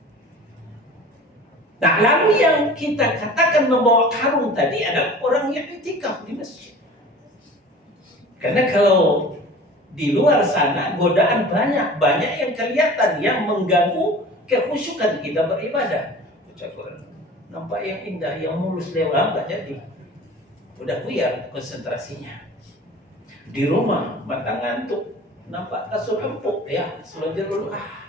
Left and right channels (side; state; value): both; normal; correlation 0.41